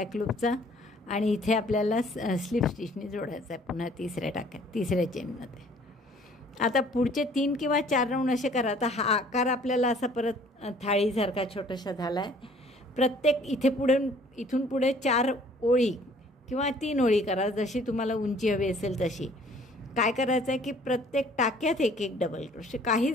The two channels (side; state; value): both; normal; correlation 0.56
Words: लूपचा आणि इथे आपल्याला स्लिप स्टिचनी जोडायचा आहे पुन्हा तिसऱ्या चेनमध्ये. आता पुढचे 3 किंवा 4 राऊंड असे करा. आता हा आकार आपल्याला असा परत थाळीसारखा छोटासा झाला आहे. प्रत्येक इथून पुढे 4 ओळी किंवा 3 ओळी करा, जशी तुम्हाला उंची हवी असेल तशी. काय करायचं आहे की प्रत्येक टाक्यात एक डबल क्रोशे,